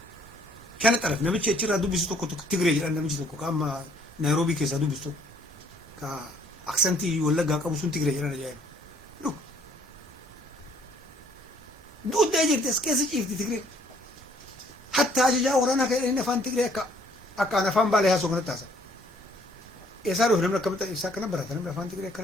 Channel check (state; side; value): normal; both; correlation 0.62